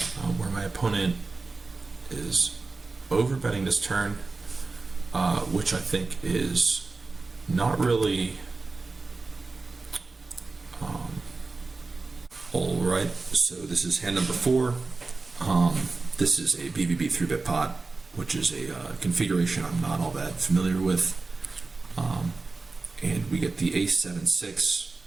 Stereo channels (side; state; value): left; quieter; 3.8 dB